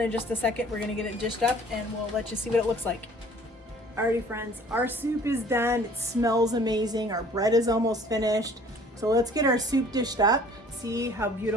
just a second. We're gonna get it dished up and we'll let you see what it looks like. Alrighty, friends, our soup is done. It smells amazing. Our bread is almost finished. So let's get our soup dished up. See how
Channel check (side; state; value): both; normal; correlation 0.52